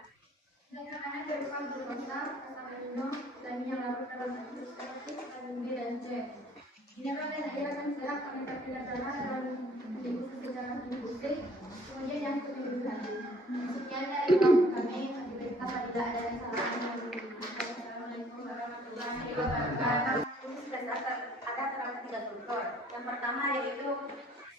Zat makanan berupa glukosa, asam amino, dan yang larut dalam bentuk seperti vitamin B dan C. Mineral dan air akan diserap oleh kapillar darah dalam didifusi secara difusi, kemudian yang lebih lanjut. Sekian dari kelompok kami. Apabila ada yang salah, Assalamualaikum warahmatullahi wabarakatuh. Usus besar ada terdapat 3 struktur. Yang pertama yaitu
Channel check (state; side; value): normal; both; correlation 0.57